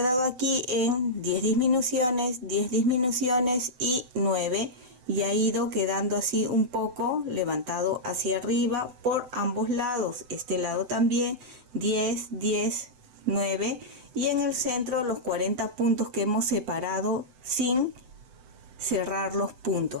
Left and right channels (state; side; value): late; left; 7.9 ms